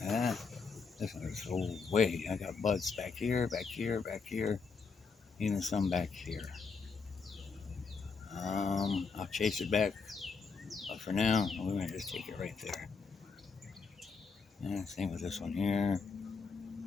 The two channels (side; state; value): right; quieter; 5.0 dB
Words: This one is so way. I got buds back here, back here, back here, even some back here. I'll chase it back, but for now, we're gonna just take it right there. Same with this one here.